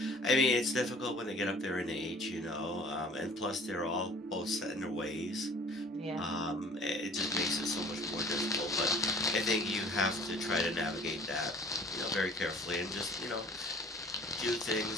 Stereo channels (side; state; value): both; normal; correlation 0.49